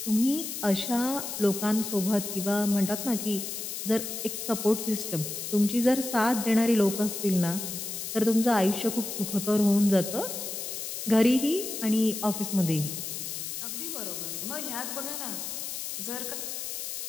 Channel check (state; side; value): noise; left; hiss, 6 dB below the sound